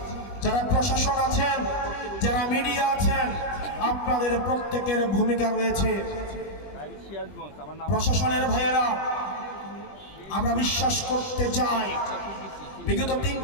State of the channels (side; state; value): right; late; 20 ms